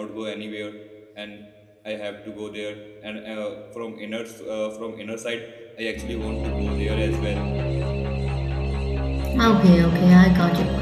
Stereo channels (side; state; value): both; identical; correlation 1.00